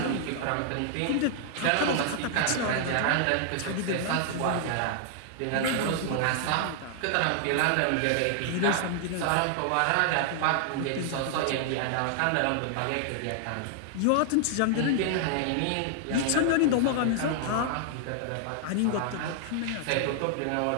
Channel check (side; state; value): both; different; correlation -0.01